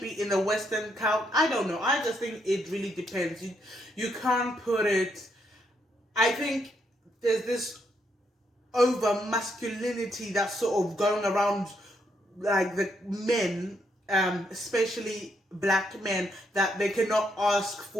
the Western count. I don't know. I just think it really depends. You can't put it. I think there's this over masculinity that's sort of going around, like the men, especially black men, that they cannot ask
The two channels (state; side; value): normal; both; correlation 0.76